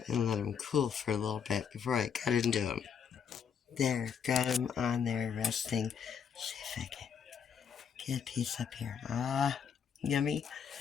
and let them cool for a little bit before I cut into them. There, got them on there resting. See if I can get a piece up here. Ah, yummy.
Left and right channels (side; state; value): right; quieter; 7.3 dB